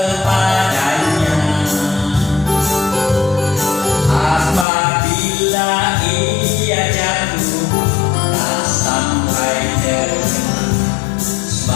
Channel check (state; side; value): drops out; right; at 4.7 s